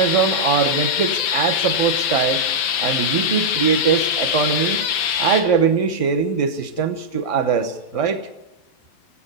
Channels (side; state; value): right; late; 12 ms